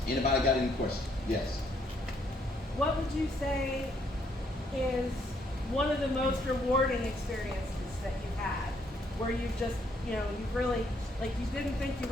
Anybody got any questions? Yes. What would you say is one of the most rewarding experiences that you've had, where you've just, you've really, like, you didn't think you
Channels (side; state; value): both; normal; correlation 0.70